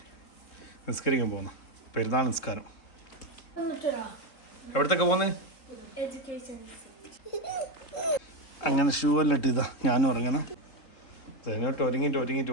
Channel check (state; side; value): late; right; 3.6 ms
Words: നിസ്കരിക്കാൻ പോകുന്നു. പെരുന്നാൾ നിസ്കാരം. എവിടത്തൊക്കെ പോകുന്നത്? അങ്ങനെ ഷൂ എല്ലാം ഇട്ട് ഞാനും ഇറങ്ങുന്നു. അതിനോട്ട് ഒരുങ്ങിയിട്ട്